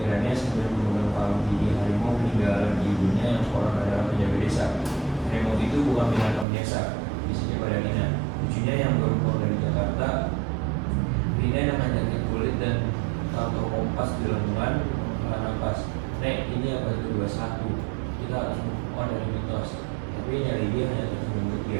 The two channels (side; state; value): left; drops out; at 6.5 s